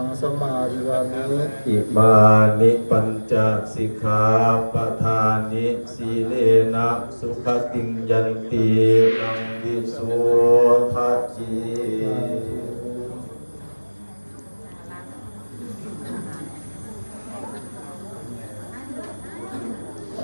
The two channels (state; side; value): inverted; both; correlation -1.00